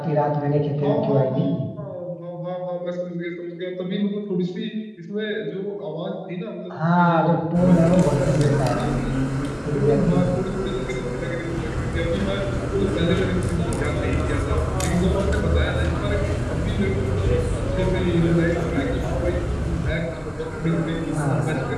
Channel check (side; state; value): both; identical; correlation 1.00